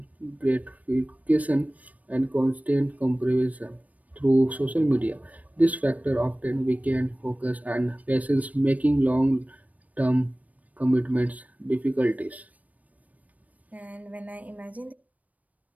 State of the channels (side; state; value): left; late; 0.072 ms